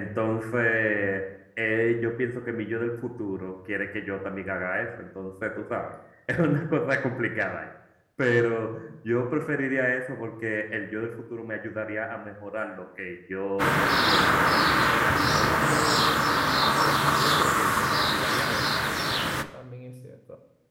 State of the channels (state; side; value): identical; both; correlation 1.00